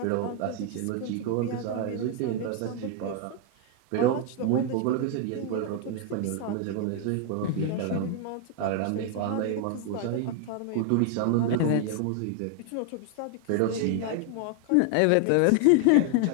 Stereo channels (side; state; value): both; different; correlation 0.01